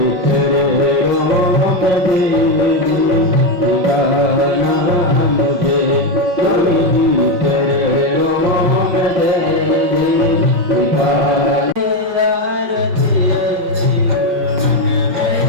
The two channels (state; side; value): late; left; 5.4 ms